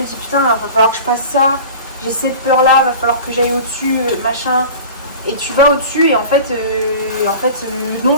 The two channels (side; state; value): both; inverted; correlation -0.38